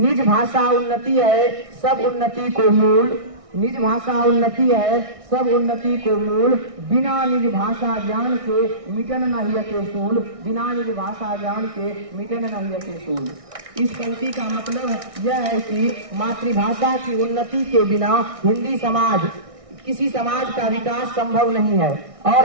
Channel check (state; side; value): late; left; 1.6 ms